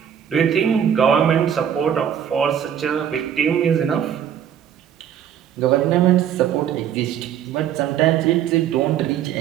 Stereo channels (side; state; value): left; quieter; 9.3 dB